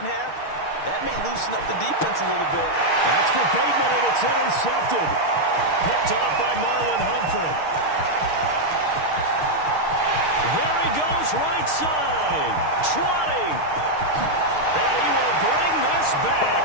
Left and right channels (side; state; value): right; late; 6.5 ms